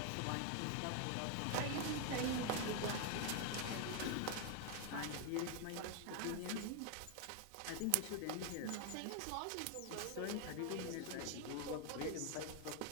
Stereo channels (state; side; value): different; both; correlation 0.01